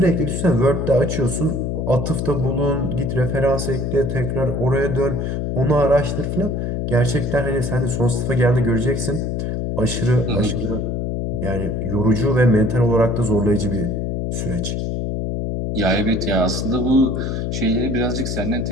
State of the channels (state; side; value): noise; left; hum, 1 dB below the sound